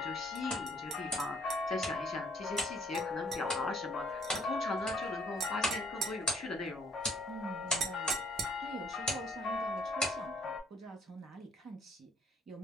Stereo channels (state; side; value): normal; both; correlation 0.62